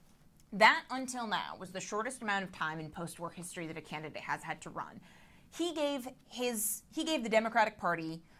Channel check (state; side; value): identical; both; correlation 1.00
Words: that until now was the shortest amount of time in post-war history that a candidate has had to run. He gave the Democratic Party